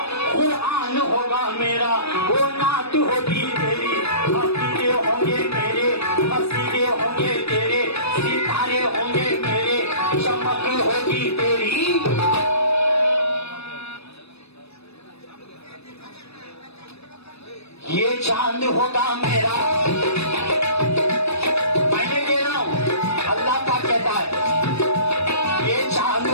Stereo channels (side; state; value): right; late; 0.79 ms